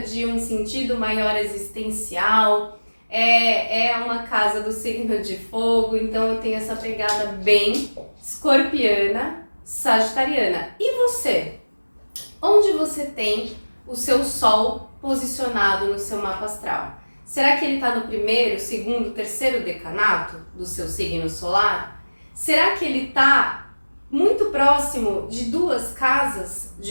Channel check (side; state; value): both; inverted; correlation -1.00